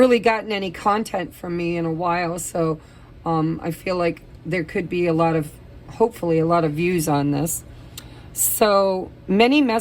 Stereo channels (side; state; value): both; identical; correlation 1.00